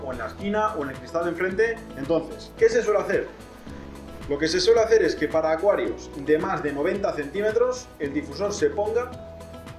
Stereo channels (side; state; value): both; identical; correlation 1.00